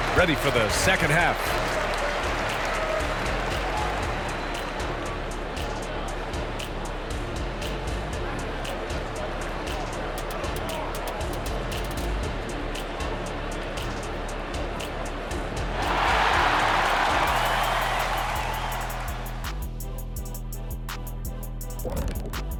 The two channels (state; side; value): identical; both; correlation 1.00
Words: ready for the second half.